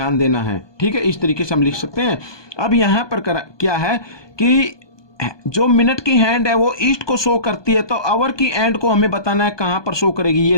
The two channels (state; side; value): late; right; 1.2 ms